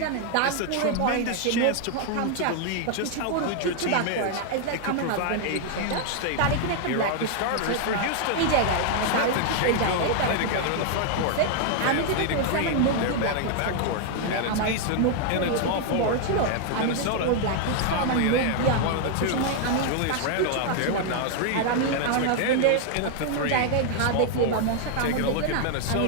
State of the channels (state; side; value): different; both; correlation 0.00